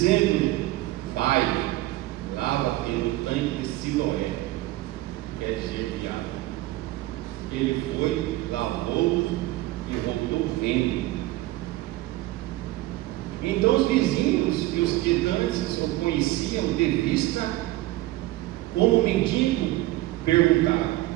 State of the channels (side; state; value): left; quieter; 17.5 dB